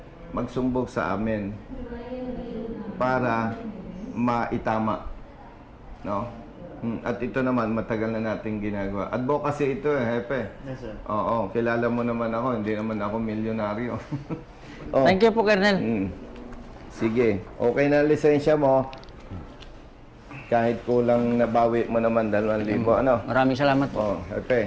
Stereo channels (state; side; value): identical; both; correlation 1.00